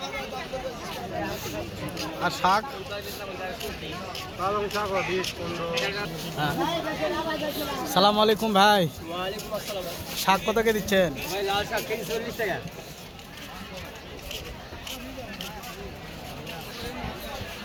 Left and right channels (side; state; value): both; identical; correlation 1.00